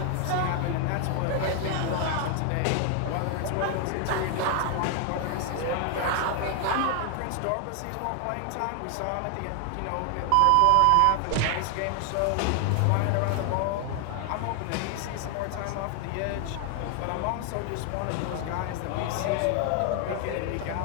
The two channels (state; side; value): different; both; correlation 0.00